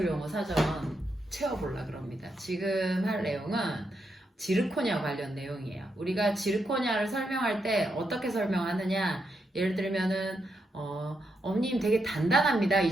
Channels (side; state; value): both; normal; correlation 0.82